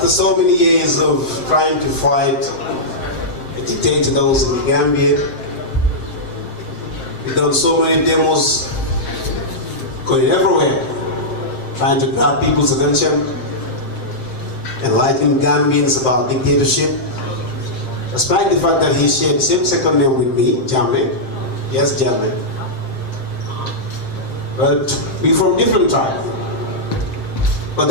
so many years of trying to fight the dictator that was in the Gambia, we've done so many demos going everywhere, trying to grab people's attention, enlighten Gambians about dictatorship, despite the fact that he shared the same second name with me, Jammeh. Yes, Jammeh. But we're from different tribes. But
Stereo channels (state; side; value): late; right; 7.6 ms